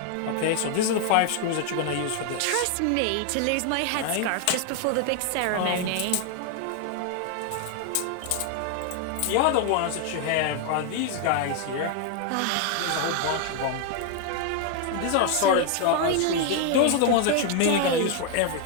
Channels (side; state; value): both; different; correlation 0.00